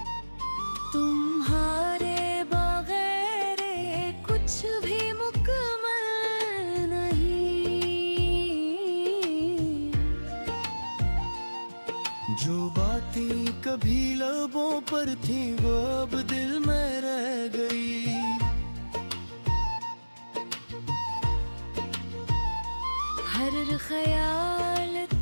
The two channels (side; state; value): both; inverted; correlation -1.00